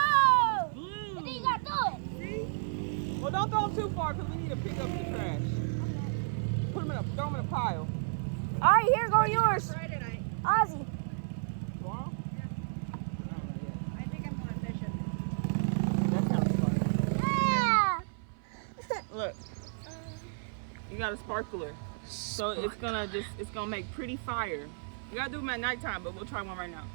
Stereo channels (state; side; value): silent; left; 55 dB below the other